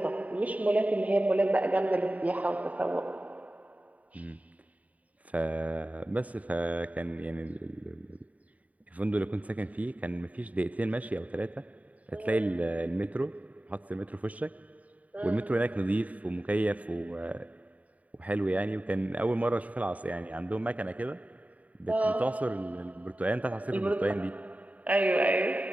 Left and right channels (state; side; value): late; left; 0.070 ms